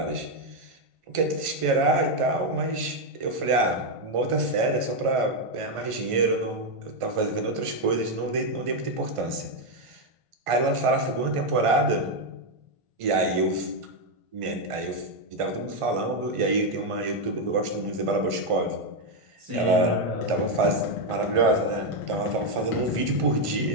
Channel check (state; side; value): late; left; 1.5 ms